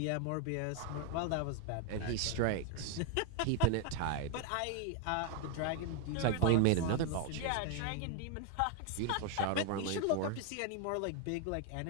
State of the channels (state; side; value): different; both; correlation 0.00